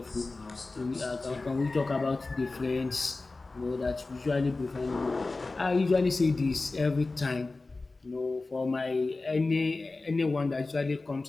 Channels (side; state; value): right; quieter; 3.4 dB